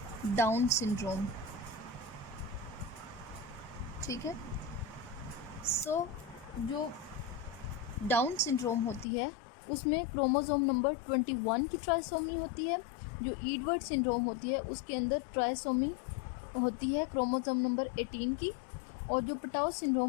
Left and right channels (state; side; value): drops out; right; at 9.1 s